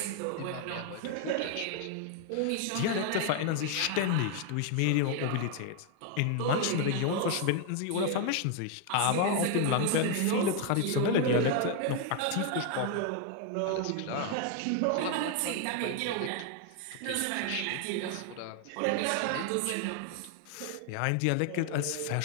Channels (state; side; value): different; both; correlation 0.00